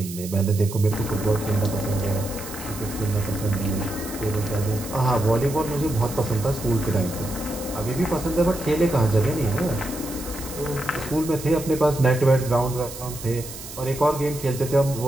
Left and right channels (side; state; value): right; noise; hiss, 12 dB below the sound